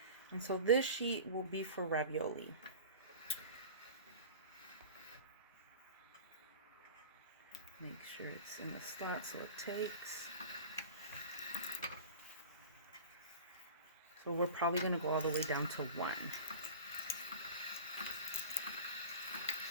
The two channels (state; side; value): inverted; both; correlation -0.36